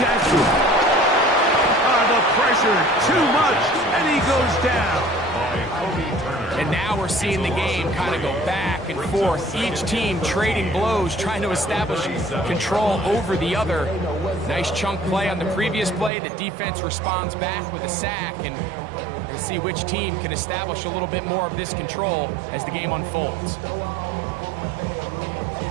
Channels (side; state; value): left; drops out; at 16.1 s